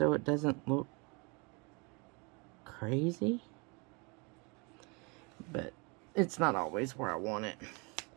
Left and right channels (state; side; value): quieter; left; 30.5 dB